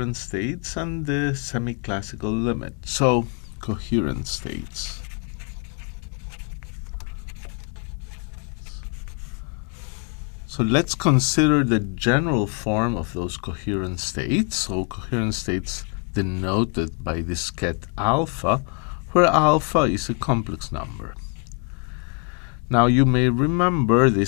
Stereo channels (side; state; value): right; quieter; 35.1 dB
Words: states and the semi-classical limit. So, coherent states. So let's consider the general form of those coherent states. So coherent states denoted by disket alpha, where alpha is a complex number. Now you may remember